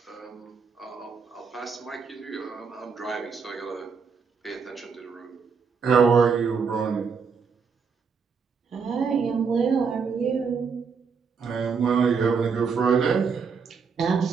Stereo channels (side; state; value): left; quieter; 5.7 dB